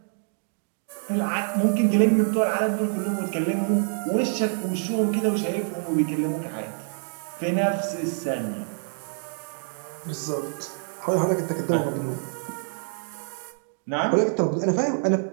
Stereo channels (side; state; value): left; silent; 59 dB below the other